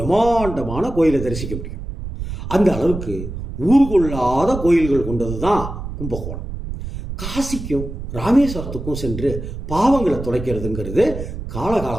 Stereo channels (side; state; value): right; noise; rumble, 8 dB below the sound